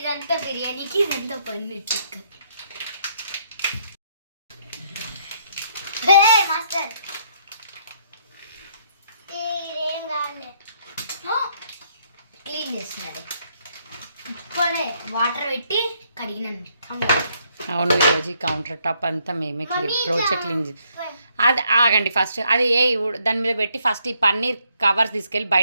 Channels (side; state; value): both; inverted; correlation -0.71